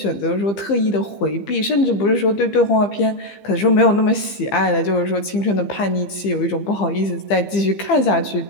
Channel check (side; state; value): right; late; 15 ms